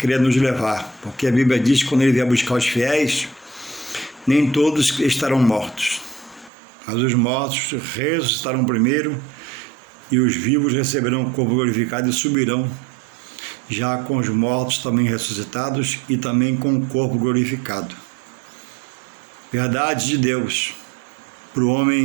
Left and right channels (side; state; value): left; drops out; at 6.5 s